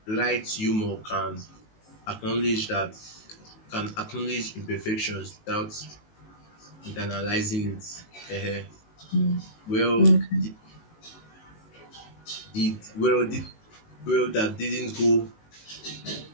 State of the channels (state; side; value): late; right; 19 ms